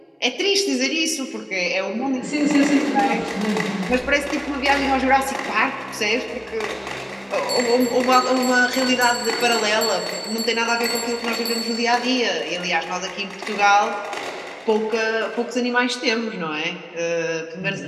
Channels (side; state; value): both; identical; correlation 1.00